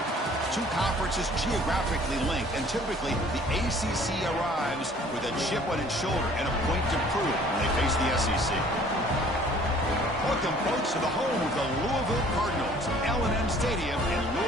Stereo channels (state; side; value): normal; both; correlation 0.54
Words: Two conferences geographically linked, and typically the ACC arrives with a chip on its shoulder and a point to prove when they face the SEC. Welcome, folks, to the home of the Louisville Cardinals, L&M Stadium in